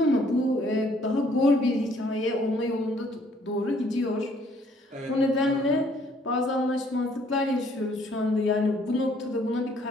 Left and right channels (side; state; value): both; normal; correlation 0.63